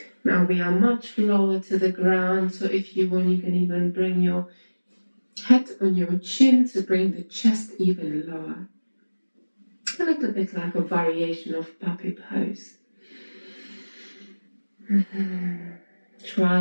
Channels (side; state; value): both; inverted; correlation -1.00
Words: Now we are much lower to the ground, so if you want, you can even bring your head on your chin to bring the chest even lower. A little bit like a variation of puppy pose. Try